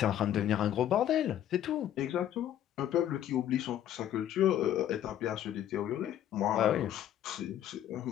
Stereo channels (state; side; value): quieter; right; 11.3 dB